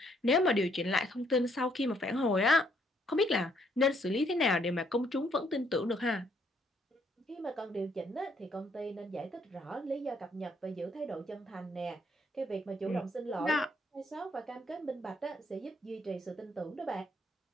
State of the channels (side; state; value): both; normal; correlation 0.69